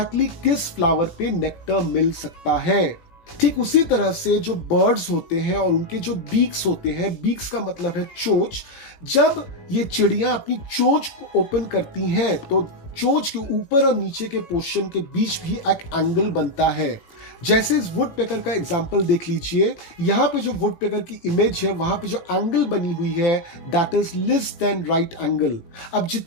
किस फ्लावर पे नेक्टर मिल सकता है। ठीक उसी तरह से जो बर्ड्स होते हैं और उनके जो बीक्स होते हैं, बीक्स का मतलब है चोंच, जब ये चिड़िया अपनी चोंच को ओपन करती हैं तो चोंच के ऊपर और नीचे के पोर्शन के बीच भी एक एंगल बनता है। जैसे इस वुड पेकर का एग्जांपल देख लीजिए, यहाँ पे जो वुड पेकर की इमेज है वहां पे जो एंगल बनी हुई है that is less than right angle. अब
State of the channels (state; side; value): late; right; 18 ms